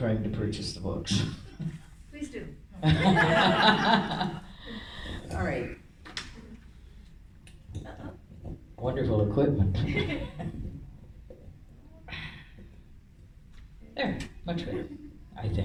to purchase the books. Please do. All right. Wonderful equipment. There, much better, I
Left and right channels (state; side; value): identical; both; correlation 1.00